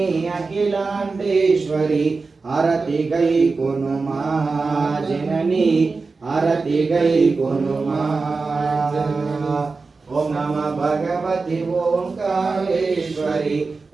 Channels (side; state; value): left; quieter; 4.2 dB